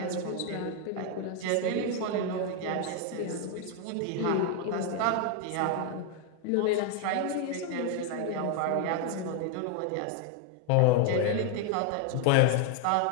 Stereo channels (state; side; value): different; both; correlation 0.01